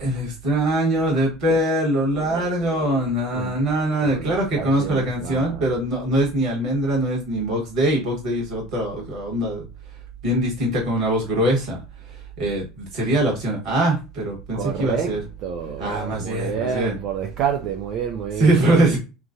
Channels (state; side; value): normal; both; correlation 0.47